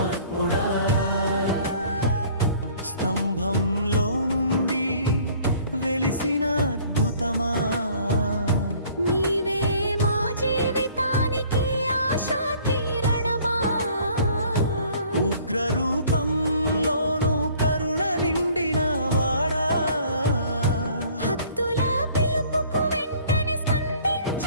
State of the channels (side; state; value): both; inverted; correlation -0.55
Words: స్తంభంలో నుండి వెలిసిన అద్భుతమా, నీవే మా జీవితానికి ఆశా కిరణమా. ఉగ్ర రూపంలోను కరుణ నిండిన వాడా, భక్తుల పిలుపుకు వెంటనే